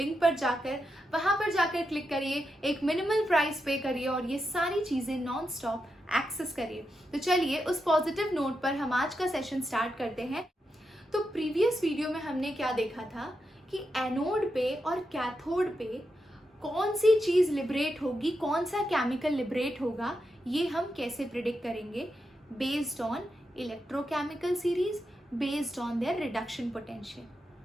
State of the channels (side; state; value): both; normal; correlation 0.86